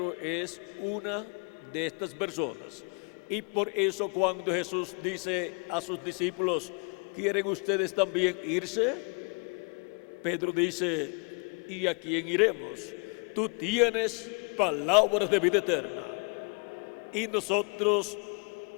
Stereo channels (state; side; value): quieter; right; 35.0 dB